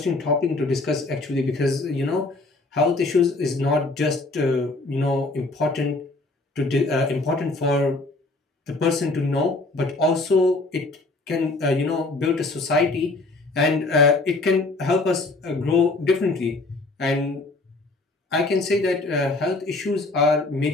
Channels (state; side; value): quieter; right; 3.1 dB